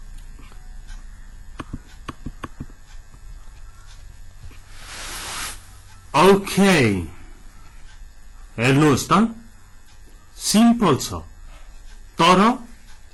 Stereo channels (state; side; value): identical; both; correlation 1.00